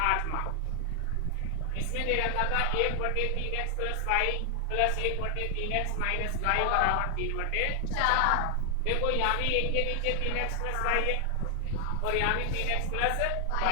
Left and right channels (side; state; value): both; different; correlation 0.00